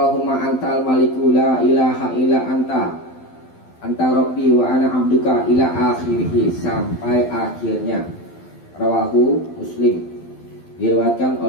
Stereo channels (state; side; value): late; right; 12 ms